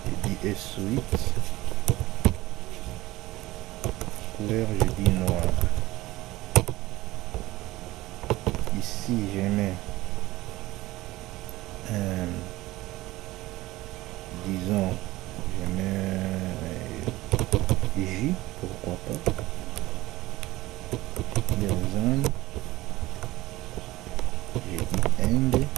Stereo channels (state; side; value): quieter; left; 18.3 dB